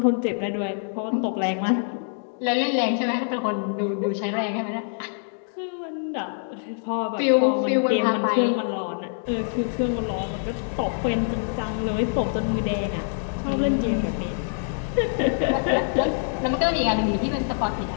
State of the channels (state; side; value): silent; right; digital silence